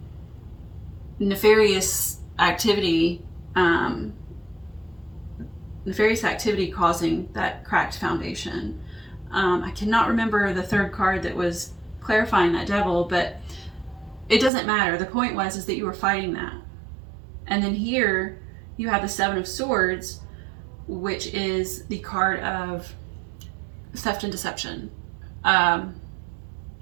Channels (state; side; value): drops out; left; at 14.5 s